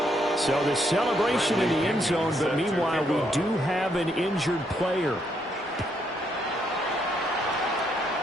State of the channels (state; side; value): normal; both; correlation 0.74